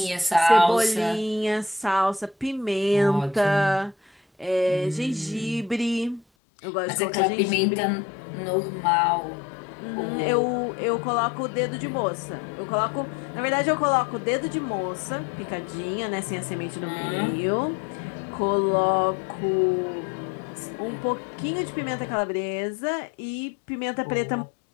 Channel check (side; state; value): right; drops out; at 6.2 s